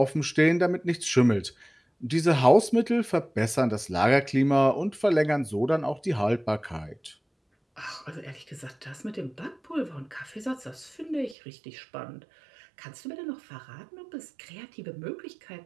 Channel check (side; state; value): left; drops out; at 11.4 s